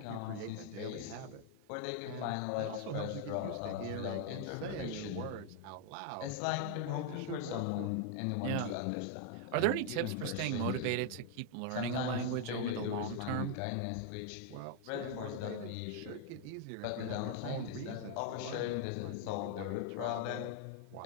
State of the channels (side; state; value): both; different; correlation 0.00